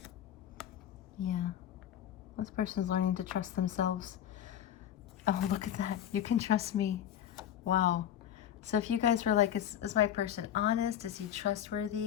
Yeah. This person's learning to trust themselves. Oh, look at that. You can trust me. Wow. So if you guys were like, is my person honest? Is he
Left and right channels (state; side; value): quieter; right; 10.4 dB